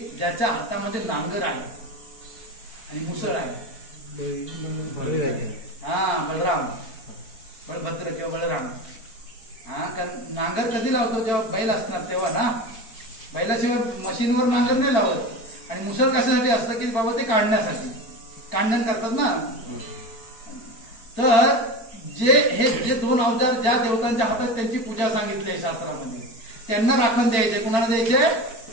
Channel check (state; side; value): late; right; 4.5 ms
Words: ज्याच्या हातामध्ये नांगर आहे आणि मुसळ आहे? हा, बलराम, बलभद्र किंवा बलराम. हा, कारण नांगर कधी लावतो? जेव्हा बैल असणार तेव्हा ना. बैलाशिवाय मशीनवर नांगर नाही लावत. आणि मुसळ कशासाठी असतं की बाबा ते काढण्यासाठी, कांडण करतात ना. तर जे दोन अवजार ज्या देवतांच्या हातात त्यांची पूजा सांगितली आहे शास्त्रामध्ये, त्यांना राखण द्यायचे. कुणाला द्यायचे?